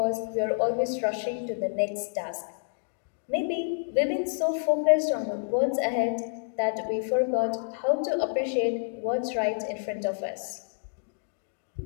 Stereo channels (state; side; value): silent; right; digital silence